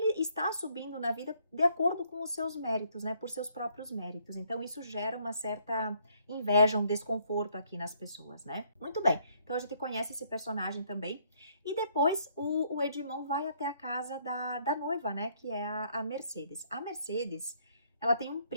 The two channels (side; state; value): both; inverted; correlation -0.67